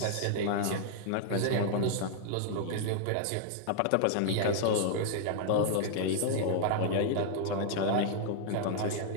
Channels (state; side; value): different; both; correlation -0.01